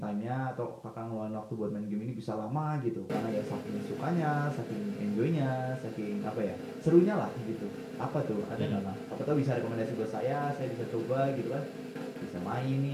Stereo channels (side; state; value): both; identical; correlation 1.00